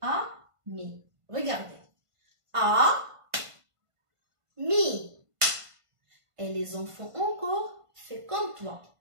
ami. Regardez. Mi. Et les enfants encore, fais comme toi.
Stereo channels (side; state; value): left; late; 1.5 ms